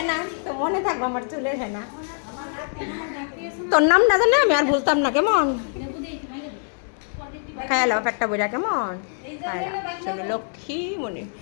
না, তো মনে থাকবো আমার চুলের হ্যাঁ না। তোর নাম না জানলে আমি আর ভুলতাম না, কেমন খায়ালাম পেটটা বইরা, কেমন চলো লক্ষ্মী মনে।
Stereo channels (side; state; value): right; silent; 58 dB below the other